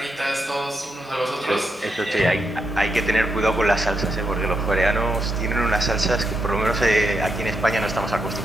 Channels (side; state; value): both; normal; correlation 0.82